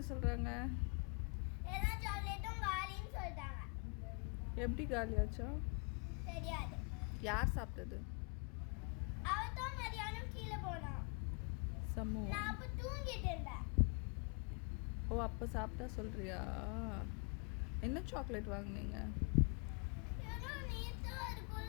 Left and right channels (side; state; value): right; quieter; 37.4 dB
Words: சொல்கிறாங்க? எல்லா சாக்லேட்டும் காலின்னு சொல்லிட்டாங்க. எப்படி காலியாச்சா? தெரியாது. யார் சாப்பிட்டது? அவதான் மதியானம் கீழே போனான். சம்மு. நான் அப்போ தூங்கிட்டு இருந்தேன். ஓ, அப்போ சாப்பிட்டா சொல்கிறியா? என்ன சாக்லேட் வாங்குனீங்க? ஏதோ நேற்று